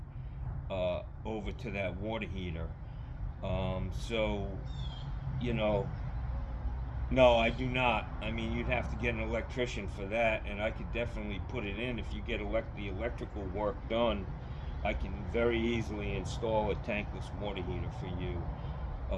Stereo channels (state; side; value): identical; both; correlation 1.00